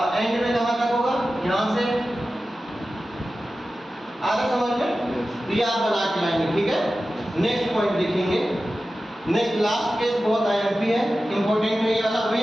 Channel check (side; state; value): both; normal; correlation 0.94